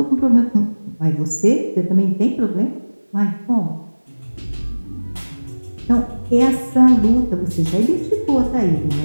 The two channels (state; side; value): inverted; both; correlation -1.00